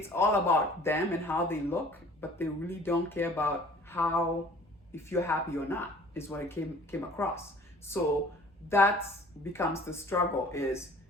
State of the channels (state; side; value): normal; both; correlation 0.50